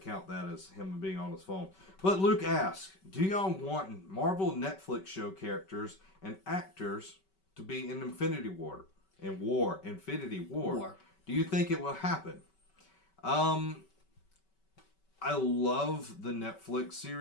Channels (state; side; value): late; right; 5.3 ms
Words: that as him being on his phone. But Luke asks, do y'all want Marvel Netflix show characters and actors to be in Infinity War? Infinity War. Do you think it will happen? I love the Netflix